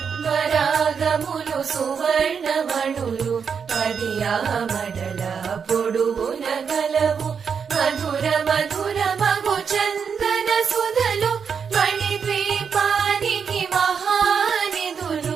పద్మరాగములు సువర్ణమణులు పడియామడల పొడుగున గలవు మధుర మధుర మగు చందన సుధలు మణిద్వీపానికి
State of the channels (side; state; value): left; quieter; 6.5 dB